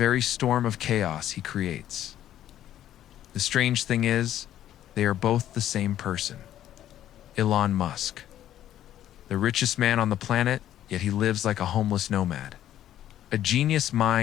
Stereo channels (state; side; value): quieter; right; 11.9 dB